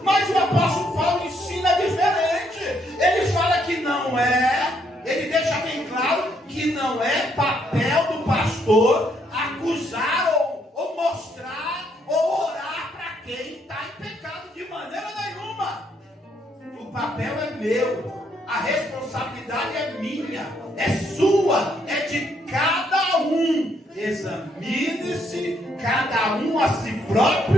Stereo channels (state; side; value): normal; both; correlation 0.72